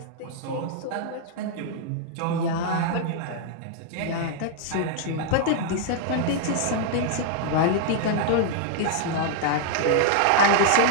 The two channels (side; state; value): both; different; correlation -0.01